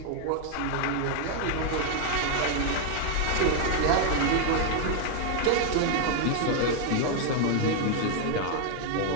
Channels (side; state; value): both; different; correlation 0.00